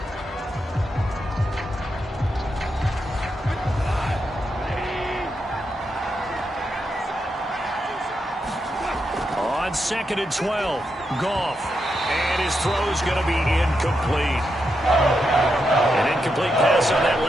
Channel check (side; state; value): both; normal; correlation 0.84